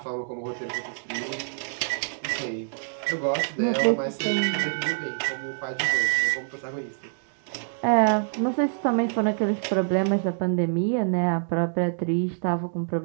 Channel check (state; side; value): silent; left; digital silence